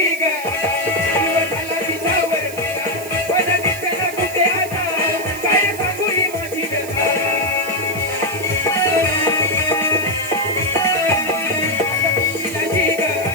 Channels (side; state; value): right; noise; hiss, 13 dB below the sound